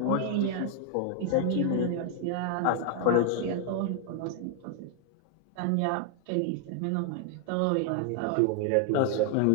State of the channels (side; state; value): both; different; correlation 0.00